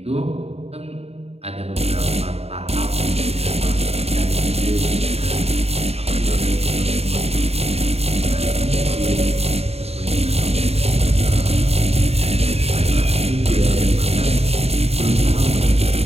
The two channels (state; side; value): late; left; 0.30 ms